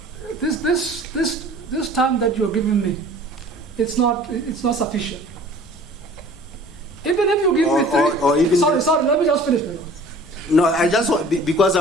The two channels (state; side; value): noise; left; rumble, 24 dB below the sound